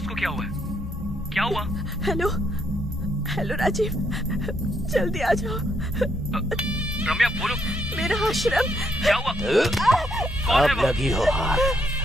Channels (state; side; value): normal; both; correlation 0.75